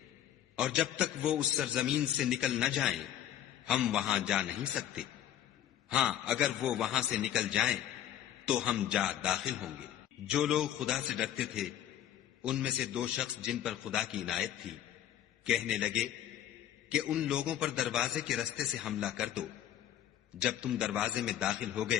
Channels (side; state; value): right; quieter; 11.2 dB